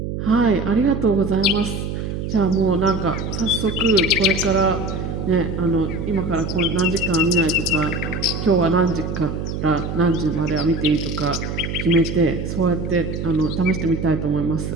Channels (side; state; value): right; noise; hum, 5 dB below the sound